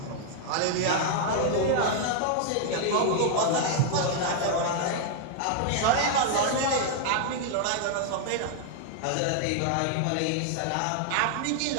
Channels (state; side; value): different; both; correlation 0.00